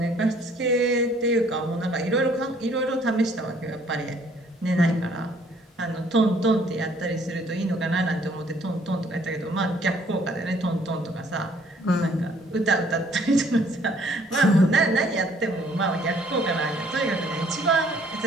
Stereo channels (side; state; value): both; normal; correlation 0.61